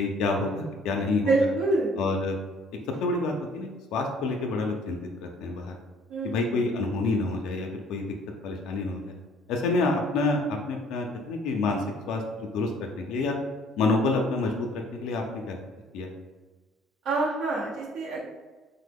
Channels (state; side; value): normal; both; correlation 0.57